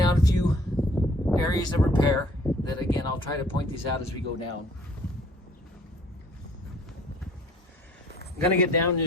out a few areas of repair that, again, I'll try to point these out as we go down. I'm gonna get down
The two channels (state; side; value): normal; both; correlation 0.56